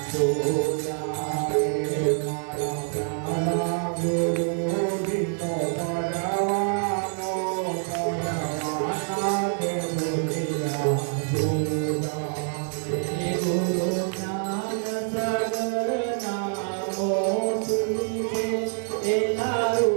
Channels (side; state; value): left; silent; 61 dB below the other